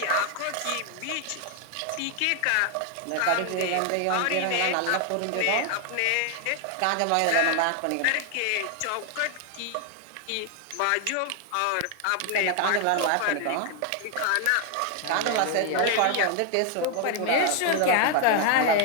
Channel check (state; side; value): different; both; correlation 0.00